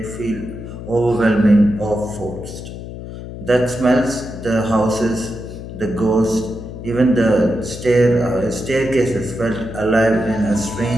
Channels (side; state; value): left; noise; hum, 10 dB below the sound